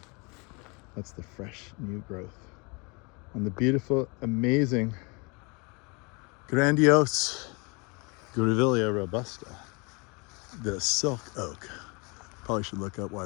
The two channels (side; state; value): right; quieter; 29.9 dB